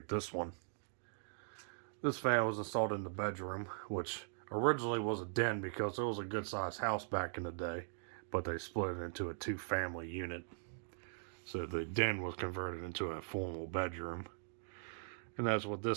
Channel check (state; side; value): silent; left; digital silence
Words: this one. This fan was installed in the bedroom, which originally was a den because it was a good sized house back in the day, but they split it into a two-family unit. So the den was converted into a formal bedroom. And that's what